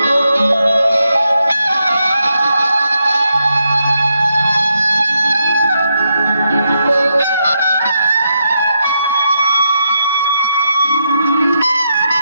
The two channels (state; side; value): inverted; both; correlation -0.82